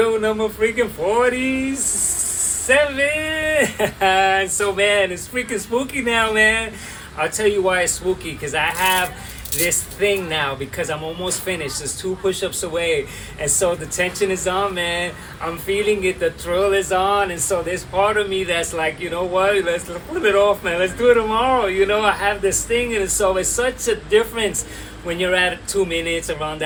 number freaking 47. So man, it's freaking spooky now, man. I'll tell you why it's spooky, because I have this thing now, because I'm almost finished. There's 2 push-ups away, and so the tension is on, man. I'm feeling it, the thrill is on, and so there's part of me that's like, you know what, let's put it off, man. Let's do it tomorrow. You know, I have this thing, and so it's such a difference when you're at 2 minutes around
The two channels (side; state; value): both; identical; correlation 1.00